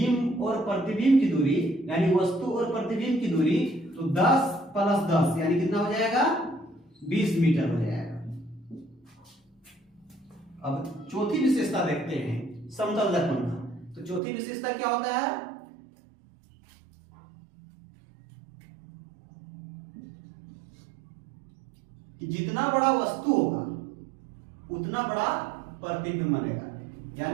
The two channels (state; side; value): drops out; left; at 14.2 s